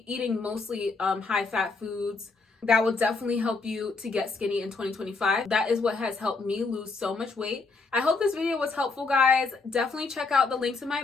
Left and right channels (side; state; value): right; quieter; 4.0 dB